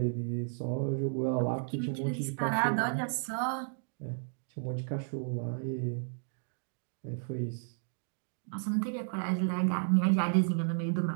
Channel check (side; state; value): left; silent; digital silence